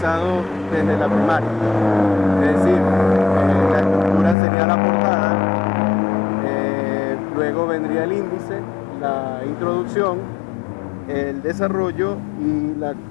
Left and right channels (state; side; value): drops out; right; at 4.4 s